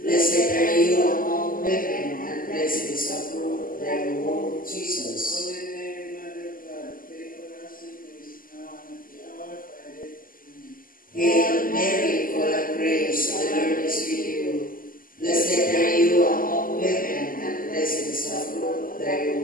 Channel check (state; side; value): late; right; 0.41 ms